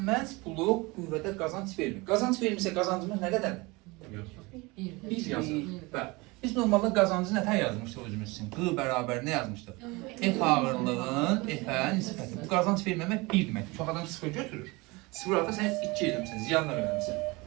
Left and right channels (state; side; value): quieter; left; 24.4 dB